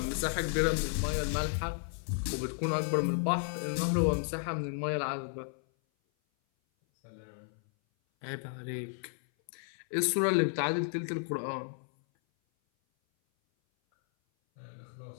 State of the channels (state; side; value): silent; right; 56 dB below the other